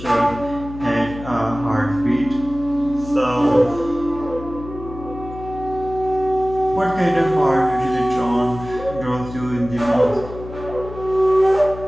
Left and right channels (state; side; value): noise; left; hum, 13 dB below the sound